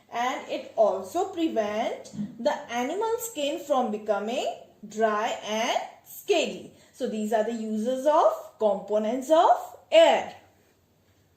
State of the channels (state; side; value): identical; both; correlation 1.00